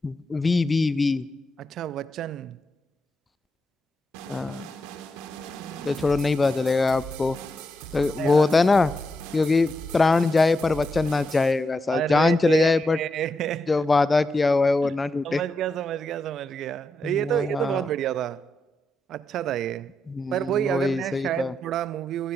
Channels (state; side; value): normal; both; correlation 0.85